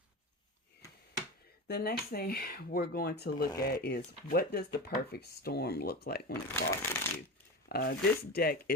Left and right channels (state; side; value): normal; both; correlation 0.25